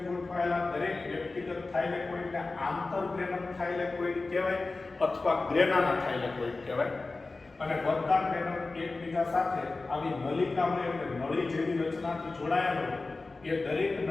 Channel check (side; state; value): right; quieter; 3.5 dB